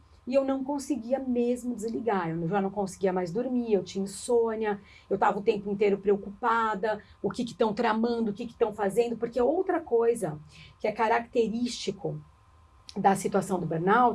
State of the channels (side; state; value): both; identical; correlation 1.00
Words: e eu não conseguia mesmo desligar. Eu já não conseguia mais dormir, eu tinha insônia, eu estava o tempo inteiro preocupada, o que estão tramando, o que estão fazendo, porque outra coisa que é característico da situação do